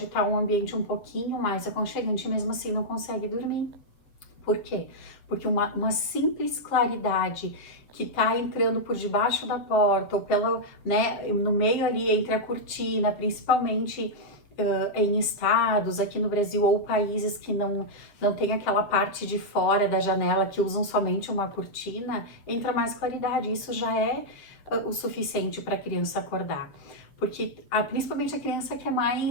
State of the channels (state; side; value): late; right; 7.5 ms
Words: estar um ambiente um pouquinho mais aconchegante, e mesmo assim não consegue dormir. Por quê? Porque uma simples claridade que tá entrando por debaixo da porta ou pela, né, no meio ali entre a cortina, principalmente em estados aqui no Brasil ou países que não tem aquela parte de fora da janela que usam somente uma cortina, entra mais claridade. Isso já é o suficiente para a criança acordar. Porque principalmente a criança que é